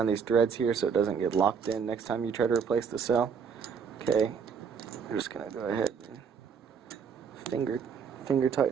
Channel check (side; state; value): left; quieter; 6.5 dB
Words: these threads here so it doesn't get locked in next time you try to replace the cell. Okay, I'm just going to go ahead and finger